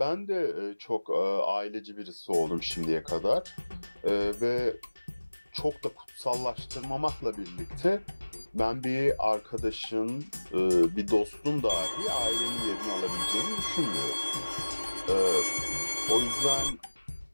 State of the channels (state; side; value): inverted; both; correlation -1.00